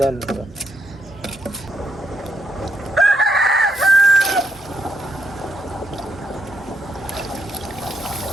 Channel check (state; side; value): normal; both; correlation 0.77